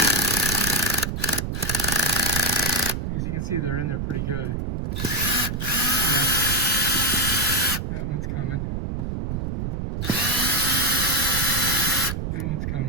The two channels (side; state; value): right; noise; rumble, 2 dB below the sound